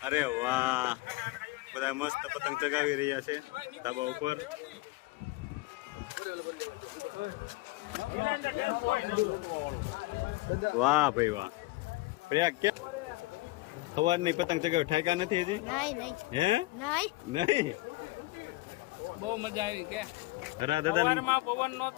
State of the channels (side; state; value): right; quieter; 20.7 dB